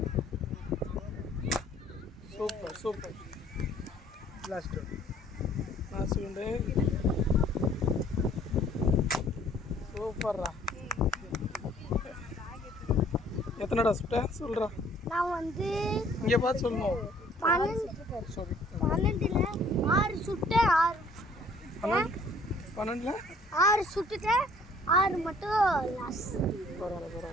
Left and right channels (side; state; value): both; normal; correlation 0.58